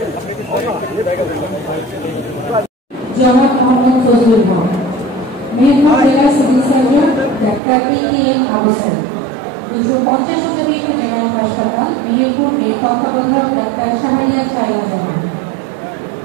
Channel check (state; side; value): drops out; left; at 7.6 s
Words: মোহাম্মদ ফজলুল হক, মেহেরপুর জেলা civil surgeon doctor A K M. Ahsan, 250 শতাধিক জেনারেল হাসপাতাল মেহেরপুর এর তত্ত্বাবধায়ক ডাক্তার শাহরিয়ার শায়লা জাহান।